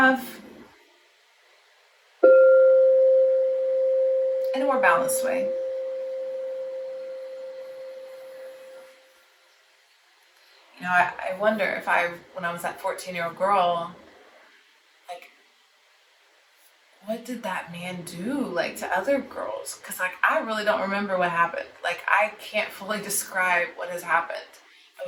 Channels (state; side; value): identical; both; correlation 1.00